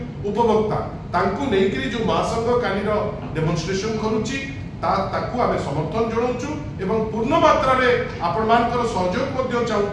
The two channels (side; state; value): both; identical; correlation 1.00